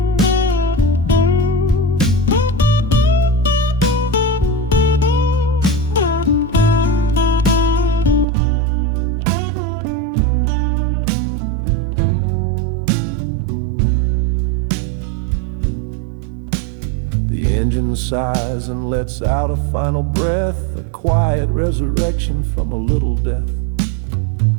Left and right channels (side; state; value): left; drops out; at 8.2 s